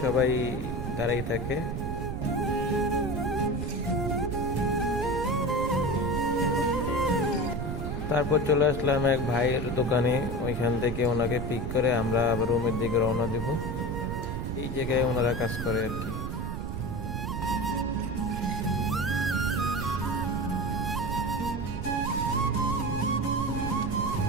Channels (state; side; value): noise; right; rumble, 4 dB below the sound